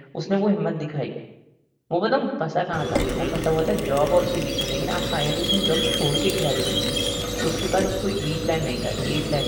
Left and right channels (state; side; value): identical; both; correlation 1.00